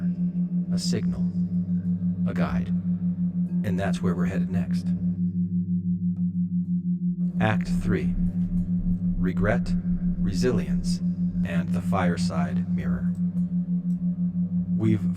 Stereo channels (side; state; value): both; identical; correlation 1.00